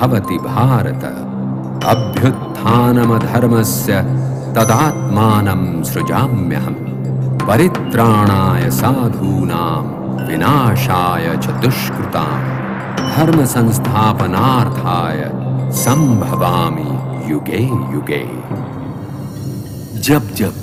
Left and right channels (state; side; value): identical; both; correlation 1.00